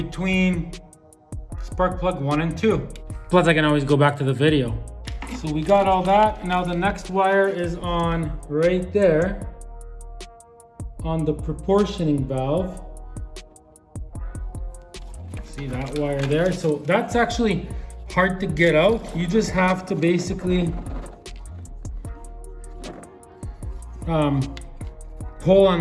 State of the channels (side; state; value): both; identical; correlation 1.00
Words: spark plug 1 and 2. Plus I can always go back to the video. So we got all that. Now the next wire is on right there on the proportioning valve. See that wire there? So that's actually hard to get out. You just have to basically pull